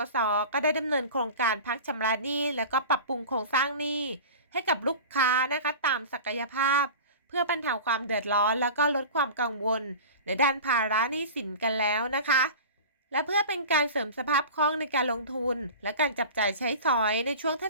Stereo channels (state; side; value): inverted; both; correlation -0.35